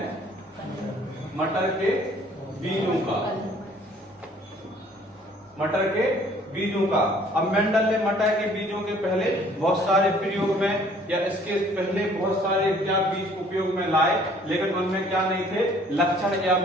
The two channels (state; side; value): normal; both; correlation 0.57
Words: मटर के बीजों का। मटर के बीजों का। अब मेंडल ने मटर के बीजों के पहले बहुत सारे प्रयोग में या इसके पहले बहुत सारे क्या बीज उपयोग में लाए, लेकिन उनमें क्या नहीं थे? लक्षण या